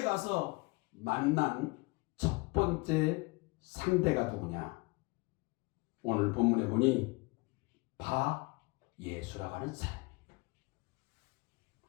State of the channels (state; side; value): quieter; right; 26.3 dB